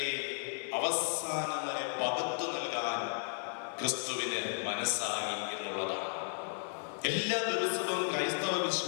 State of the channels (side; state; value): right; silent; 55 dB below the other